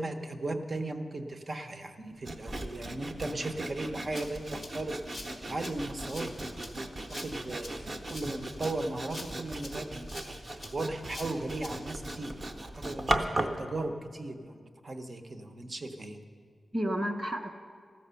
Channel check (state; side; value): normal; both; correlation 0.93